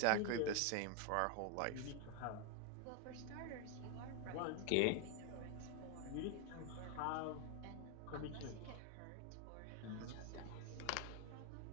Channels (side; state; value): both; different; correlation 0.01